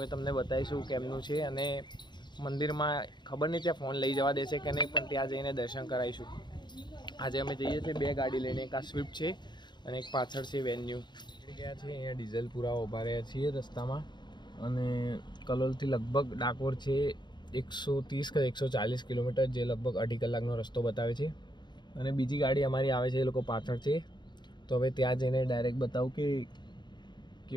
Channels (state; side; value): late; right; 0.21 ms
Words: તમને બતાવીશું કેમનું છે અને મંદિરમાં ખબર નહીં ત્યાં ફોન લઈ જવા દેશે કે નહીં, પણ ત્યાં જઈને દર્શન કરાવીશું. આજે અમે જઈએ છીએ બે ગાડી લઈને, એક આ સ્વિફ્ટ છે અને એક પાછળ છે વેન્યુ. ગયા છે અહીંયા ડીઝલ પૂરા ઊભા રહ્યા છીએ રસ્તામાં અને કલોલથી લગભગ ડાકોર છે 130 કે 140 કિલોમીટર, જે લગભગ 2.5 કલાકનો રસ્તો બતાવે છે. અને બીજી ગાડી અમારી આવે છે, એ લોકો પાછળ છે. તો હવે ત્યાં જઈને ડાયરેક્ટ બતાવું કે